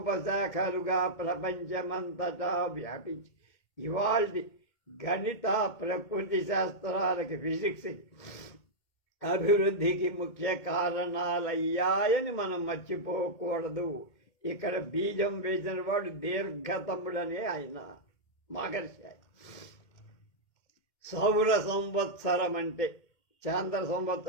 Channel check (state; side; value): late; right; 2.2 ms